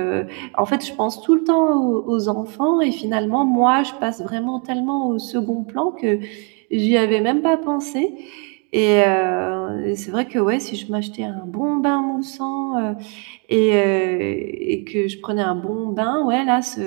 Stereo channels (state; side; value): quieter; left; 36.4 dB